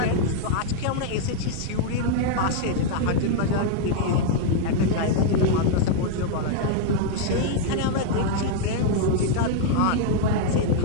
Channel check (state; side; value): different; both; correlation -0.01